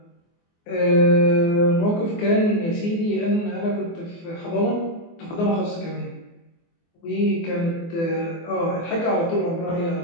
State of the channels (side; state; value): right; late; 24 ms